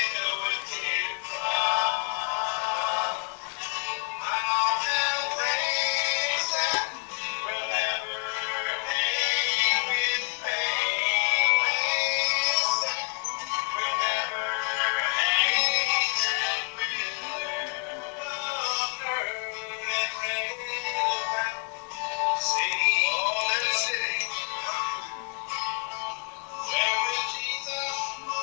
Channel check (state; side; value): quieter; right; 37.2 dB